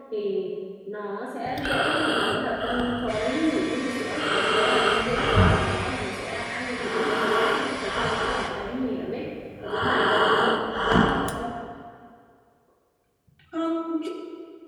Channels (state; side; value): identical; both; correlation 1.00